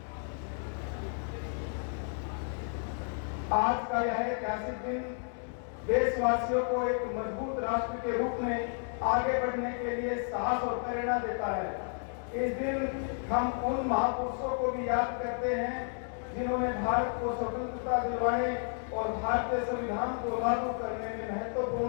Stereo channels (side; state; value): right; silent; 56 dB below the other